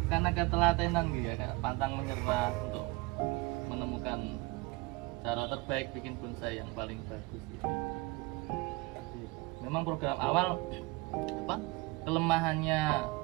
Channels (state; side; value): quieter; left; 23.8 dB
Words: karena ketelatenan gitu ya, kayak pantang menyerah untuk menemukan cara terbaik bikin bonsai yang paling bagus gitu. Jadi, memang program awal apa kelemahannya